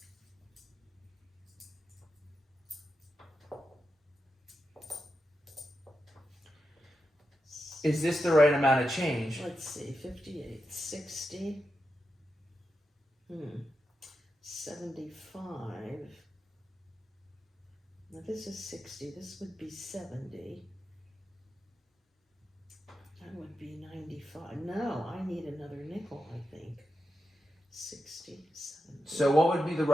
Is this the right amount of change? Let's see, 58, 60. 75. Now this is 60. This would be 70. That would be 95. No, I need another nickel, I think. 60, 70. So what would be the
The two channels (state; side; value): normal; both; correlation 0.88